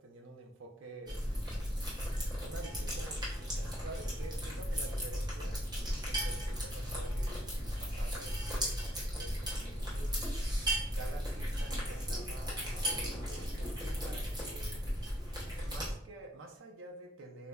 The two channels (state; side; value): normal; both; correlation 0.70